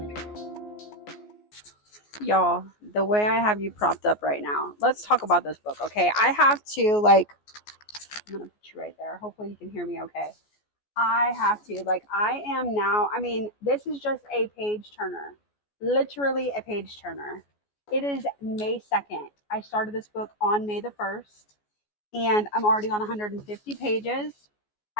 Y'all, the way I have you propped up right now, let's talk about this book, okay? I have to, like, I'm gonna put you right there. Hopefully you can hear me okay. I have to, like, I am now, I mean, this is just a page turner. Literally a page turner. It is May 2nd. I started this book on May the 1st, and I'm already on 150 pages.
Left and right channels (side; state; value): right; late; 14 ms